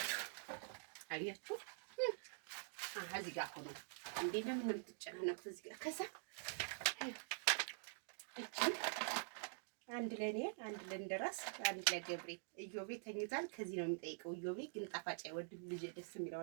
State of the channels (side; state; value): left; silent; digital silence